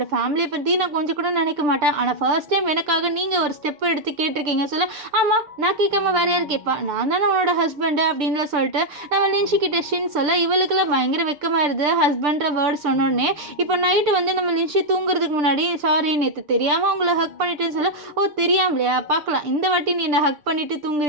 ஃபேமிலியை பற்றி நான் கொஞ்சம் கூட நினைக்க மாட்டேன், ஆனால் ஃபர்ஸ்ட் டைம் எனக்காக நீங்கள் ஒரு ஸ்டெப் எடுத்து கேட்டிருக்கீங்க சொல்ல ஆமாம் நான் கேட்காம வேற யார் கேட்பா, நான் தானே உன்னோட ஹஸ்பண்டு அப்படின்லாம் சொல்லிட்டு நம்ம லின்ஷிக்கிட்ட ஷின் சொல்ல இவளுக்குலாம் பயங்கர வெக்கமாயிருது ஹஸ்பண்ட்ற வேர்டு சொன்னோடனே. இப்போ நைட்டு வந்து நம்ம லின்ஷி தூங்குறதுக்கு முன்னாடி சாரி நேற்று தெரியாமல் உங்களை ஹக் பண்ணிட்டுன்னு சொல்ல ஓ தெரியாமலையா பார்க்கலாம் இந்த வாட்டி நீ என்னை ஹக் பண்ணிட்டு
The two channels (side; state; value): left; late; 6.8 ms